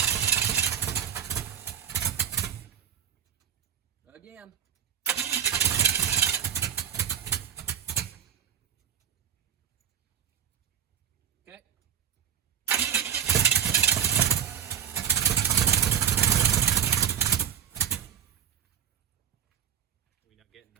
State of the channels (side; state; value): left; quieter; 8.8 dB